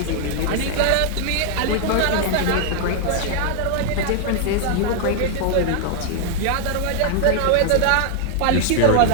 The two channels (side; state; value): both; different; correlation 0.00